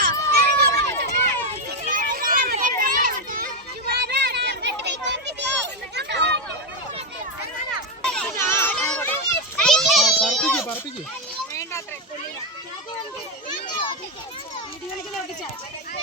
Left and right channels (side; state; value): both; normal; correlation 0.07